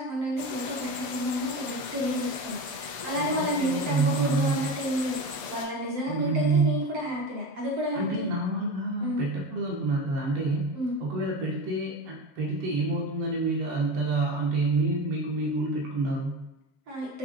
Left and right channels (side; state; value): left; late; 6.6 ms